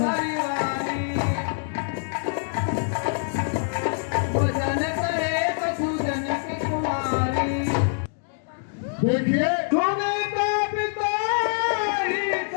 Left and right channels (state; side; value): silent; right; digital silence